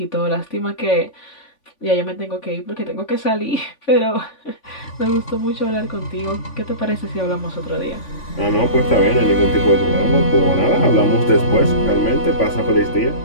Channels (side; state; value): right; late; 3.5 ms